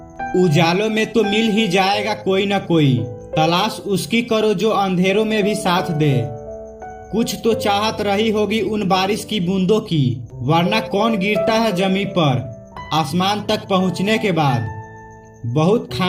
उजालों में तो मिल ही जाएगा कोई न कोई, तलाश उसकी करो जो अंधेरों में भी साथ दे। कुछ तो चाहत रही होगी उन बारिश की बूंदों की, वरना कौन गिरता है जमीन पर आसमान तक पहुंचने के बाद। बहुत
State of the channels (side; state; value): both; identical; correlation 1.00